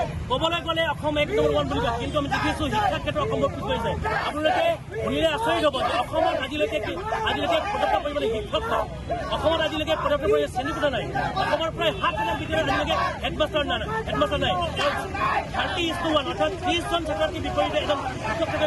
ক'বলৈ গ'লে অসম এক নম্বৰ ওৱান বুলি কয়, কিন্তু আমি দেখিছো শিক্ষাৰ ক্ষেত্ৰত অসমৰ পিছ পৰিছে। আপোনালোকে শুনিলে আচৰিত হ'ব যে অসমত আজিলৈকে পদত্যাগ কৰিবলৈ শিক্ষক নাই, অসমত আজিলৈকে পদত্যাগ কৰিবলৈ শ্ৰেণীকোঠা নাই, অসমৰ প্ৰায় 7 বিদ্যালয়ত আজিলৈকে হেডমাষ্টাৰ নাই 30:1 অৰ্থাৎ 30জন ছাত্ৰছাত্ৰীৰ বিপৰীতে এজন শিক্ষক থাকে।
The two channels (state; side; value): identical; both; correlation 1.00